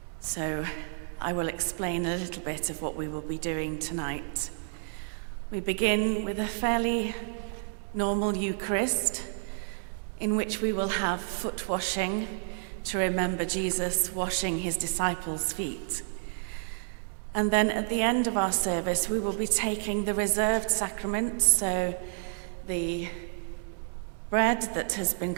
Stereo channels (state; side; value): silent; left; digital silence